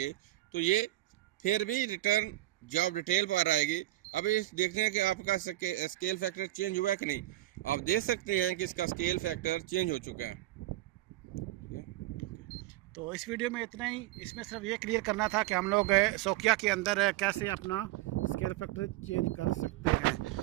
तो ये फिर भी रिटर्न जॉब डिटेल पर आएगी। अब इस देखते हैं कि आपका स्केल फैक्टर चेंज हुआ है कि नहीं। आप देख सकते हैं कि इसका स्केल फैक्टर चेंज हो चुका है। तो इस वीडियो में इतना ही। इसमें सिर्फ ये क्लियर करना था कि हम लोग सोकिया के अंदर कैसे अपना स्केल फैक्टर चेंज कर सकते हैं।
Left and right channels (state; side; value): quieter; left; 16.5 dB